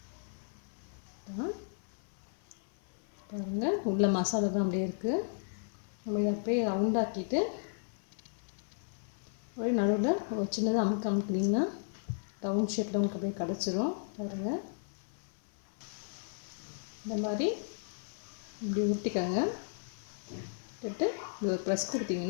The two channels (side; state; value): right; silent; 55 dB below the other